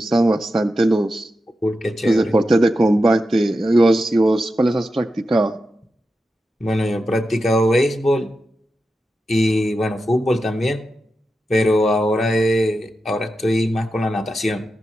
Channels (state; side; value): normal; both; correlation 0.90